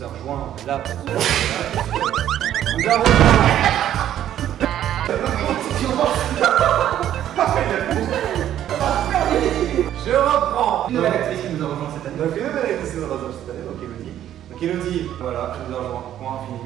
rejoint là pour nous a rejoint. Je reprends. Une nouvelle actrice qui nous a rejoint cette année. Donc une nouvelle actrice qui nous a rejoint cette année, donc Elodie. Donc Elodie, voilà, je nous a rejoint. Point fini.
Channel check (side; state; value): left; quieter; 11.4 dB